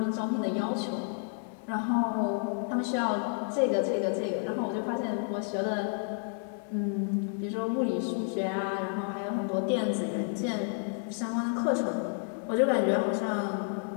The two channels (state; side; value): silent; right; 57 dB below the other